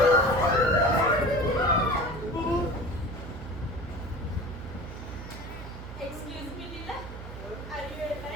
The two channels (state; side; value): noise; right; hum, 11 dB below the sound